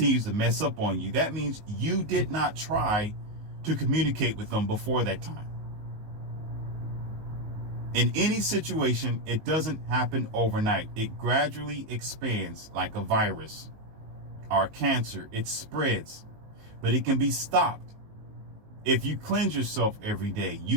to mess up on you, that means you did not try to communicate with them before that time. In any situation, it doesn't happen overnight. It gradually expands like a virus or cancer. It spreads, but it can be stopped. If you cleanse yourself every day,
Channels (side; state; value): left; late; 19 ms